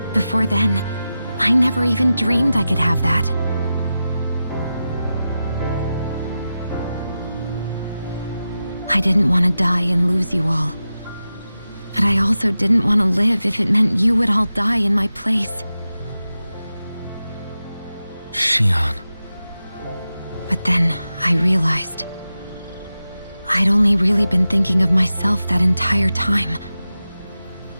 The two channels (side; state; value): both; inverted; correlation -0.92